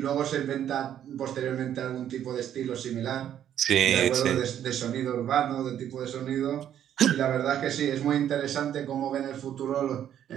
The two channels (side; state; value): left; quieter; 10.3 dB